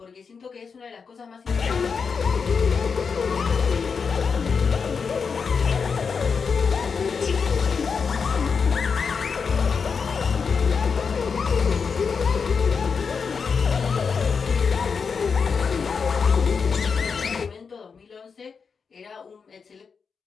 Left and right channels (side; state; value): right; quieter; 5.6 dB